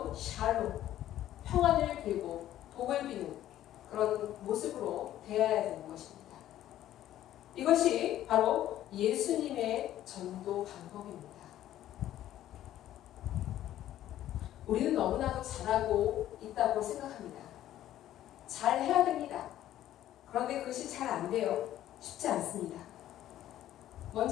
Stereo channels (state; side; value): quieter; right; 12.8 dB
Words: 샬롬, 평안을 빌고 복을 비는 그런 모습으로 대해야 되는 것입니다. 이것이 바로 예수님의 전도 방법입니다. 우리는 너무나도 잘하고 있다고 생각합니다. 잘 해야 됩니다. 그런데 그것이 잘 안 돼요. 쉽지 않습니다.